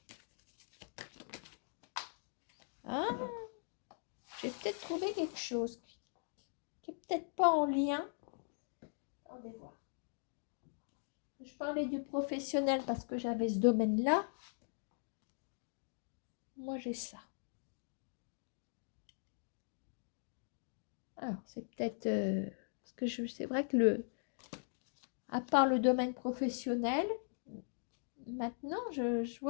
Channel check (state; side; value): silent; right; digital silence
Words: Hein? J'ai peut-être trouvé quelque chose qui n'est peut-être pas en lien. Attendez voir. Je parlais du professionnel parce que j'avais ce domaine-là. Moi, j'ai ça. Alors, c'est peut-être... parce que c'est vrai que à part le domaine professionnel, maintenant, je